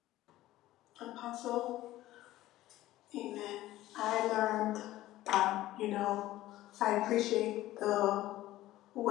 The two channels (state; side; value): quieter; right; 15.6 dB